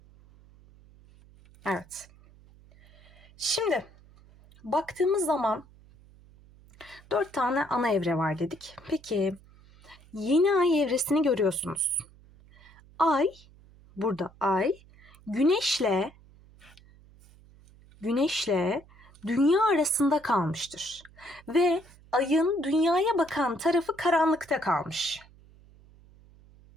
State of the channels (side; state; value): right; noise; hum, 25 dB below the sound